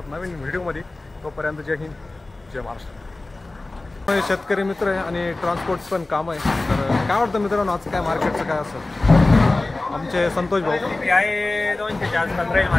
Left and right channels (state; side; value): quieter; right; 3.0 dB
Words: नवीन व्हिडिओमध्ये. तोपर्यंत जय हिंद, जय महाराष्ट्र. शेतकरी मित्र आहे आणि ट्रान्सपोर्ट पण काम आहे. तर काय वाटतं मित्रांनो आज काय मार्केटचं काय असं? आमचे संतोष भाऊ आहे 200 आसपास राहील